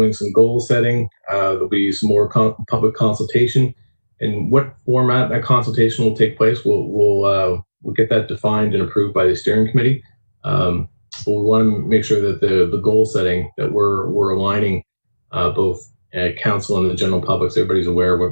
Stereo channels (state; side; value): inverted; both; correlation -1.00